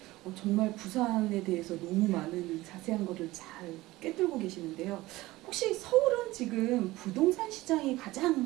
정말 부산에 대해서 너무 많은 자세한 거를 잘 꿰뚫고 계시는데요. 혹시 서울은 지금 부동산 시장이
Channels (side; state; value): left; quieter; 18.6 dB